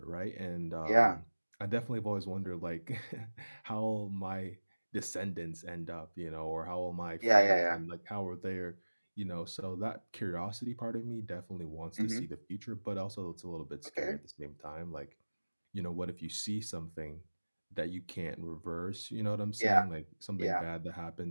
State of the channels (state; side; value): inverted; both; correlation -1.00